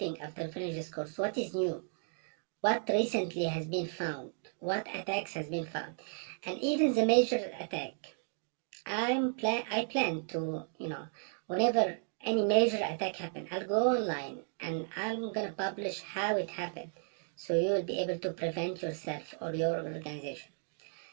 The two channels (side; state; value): left; silent; 55 dB below the other